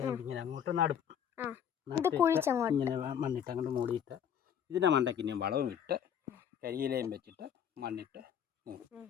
അങ്ങോട്ട് നടും. ഇങ്ങനെ മണ്ണിട്ട് അങ്ങോട്ട് മൂടിയിട്ട് ഇതിൻ്റെ മണ്ടയ്ക്ക് ഇനിയും വളവും ഇട്ട് കരിയിലയും വെച്ചിട്ട് മണ്ണിട്ട് മൂടും.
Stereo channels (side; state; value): right; quieter; 8.7 dB